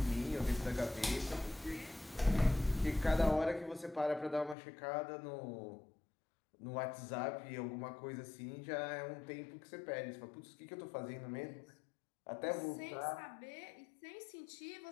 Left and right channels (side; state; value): right; drops out; at 4.5 s